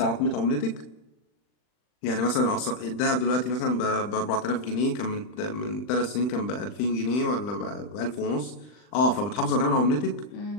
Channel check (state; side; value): late; right; 39 ms